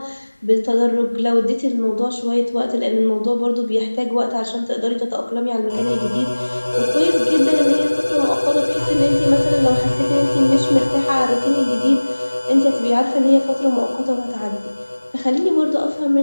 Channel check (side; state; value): both; inverted; correlation -1.00